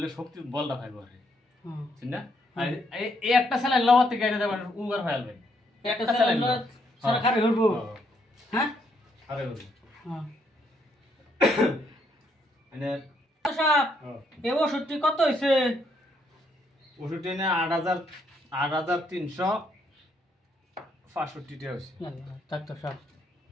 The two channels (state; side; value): normal; both; correlation 0.73